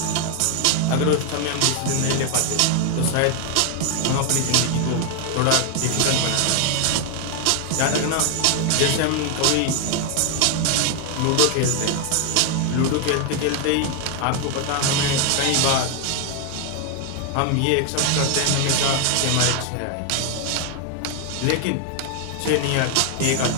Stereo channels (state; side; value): different; both; correlation 0.00